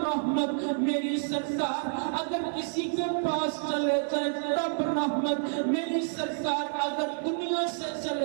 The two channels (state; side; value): silent; left; 59 dB below the other